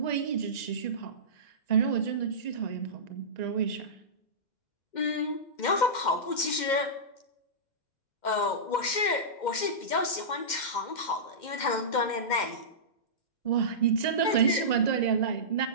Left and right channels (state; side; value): late; right; 2.1 ms